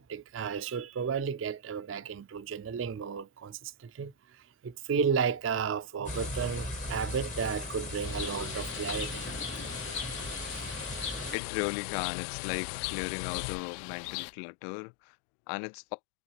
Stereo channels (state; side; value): drops out; right; at 11.4 s